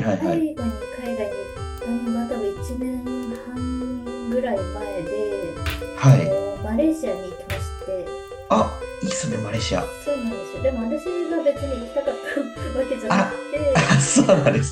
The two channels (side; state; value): both; identical; correlation 1.00